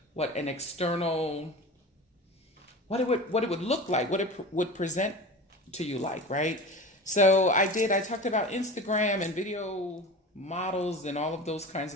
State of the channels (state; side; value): normal; both; correlation 0.32